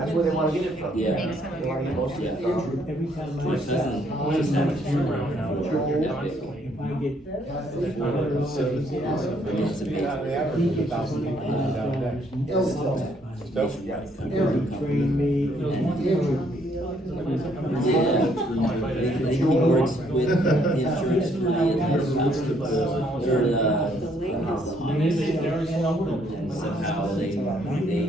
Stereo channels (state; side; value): normal; both; correlation 0.68